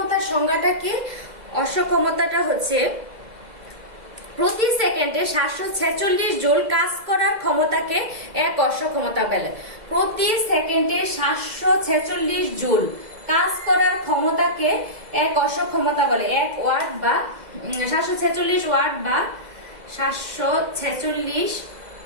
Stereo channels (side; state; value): left; late; 2.0 ms